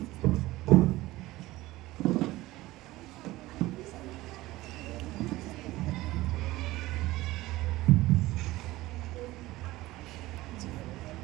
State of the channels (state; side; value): quieter; left; 18.1 dB